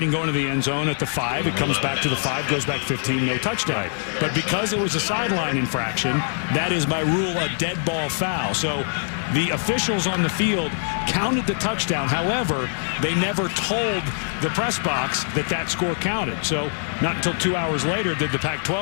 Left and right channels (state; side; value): silent; right; digital silence